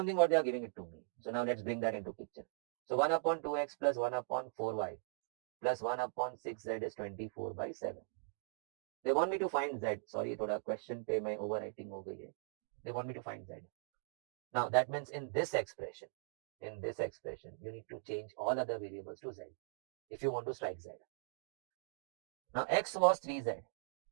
what they are giving it to me. So now let's bring that into picture. So 1 upon 2x plus 1 upon 4y plus 1 upon 6z is 24 by 7. They want me to find z. Sorry, thoda question पे मैं overwriting हो गई है. They want me to find z. Now that means in this expression, you need to change all other variables to z if you want to strike z. Now x was 3z.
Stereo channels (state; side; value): silent; left; digital silence